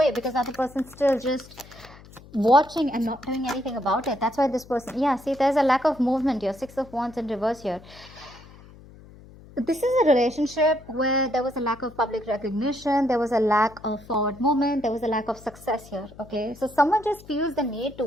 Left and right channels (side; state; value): left; noise; hum, 21 dB below the sound